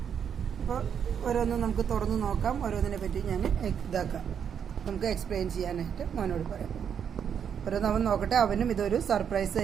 അപ്പോൾ ഓരോന്നും നമുക്ക് തുറന്ന് നോക്കാം. ഓരോന്നിനെ പറ്റി ഞാൻ നമുക്ക് എക്സ്പ്ലെയിൻ ചെയ്യാനായിട്ട് മോനോട് പറയാം. ഓരോന്ന് അവൻ നോക്കട്ടെ. അവനും ഇതൊരു സർപ്രൈസ്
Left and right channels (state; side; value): quieter; left; 7.9 dB